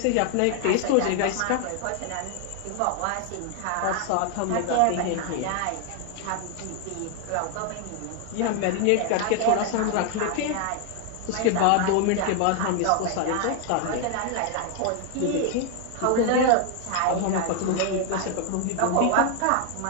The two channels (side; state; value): both; different; correlation 0.00